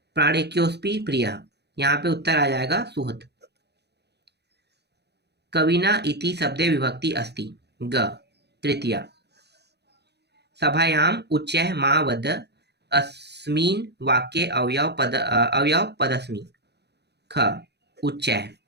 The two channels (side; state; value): left; late; 0.49 ms